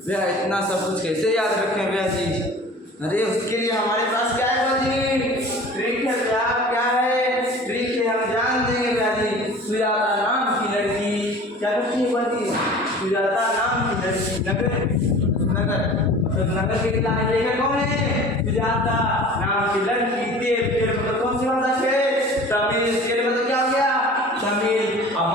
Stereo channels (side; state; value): both; normal; correlation 0.42